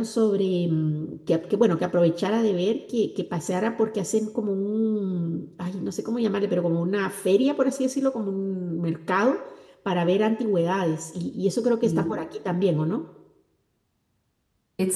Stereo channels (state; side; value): identical; both; correlation 1.00